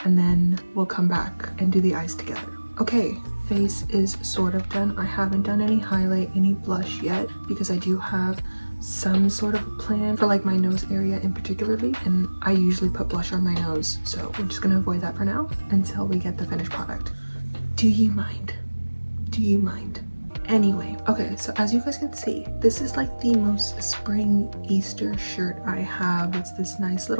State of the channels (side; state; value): both; inverted; correlation -1.00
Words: and then we'll come back and do the eyes together. Okay, face is sort of done. I haven't done any highlight, any blush yet, because I do have some sort of a plan for like my nose area in particularly, and I usually put blush on my nose. So we're just going to avoid that for now until we get the finished product. Do you mind? Do you mind? Anyway, okay, so as you guys can see, this is like the most spring Easter shirt I have. It's this nice